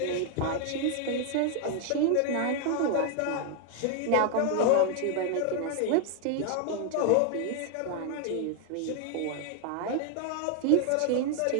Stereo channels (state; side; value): different; both; correlation 0.00